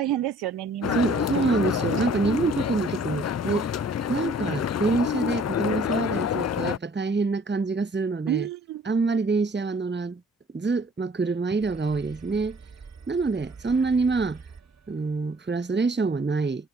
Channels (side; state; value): both; normal; correlation 0.56